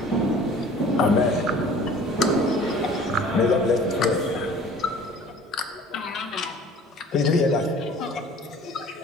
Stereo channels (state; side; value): normal; both; correlation 0.48